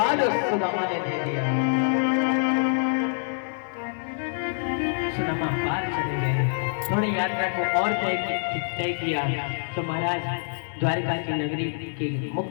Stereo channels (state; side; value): silent; right; 61 dB below the other